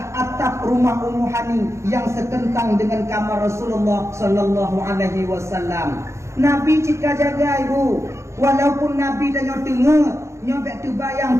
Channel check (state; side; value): late; left; 0.14 ms